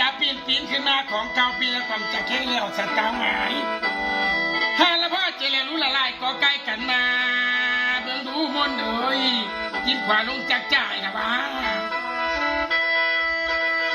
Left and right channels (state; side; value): identical; both; correlation 1.00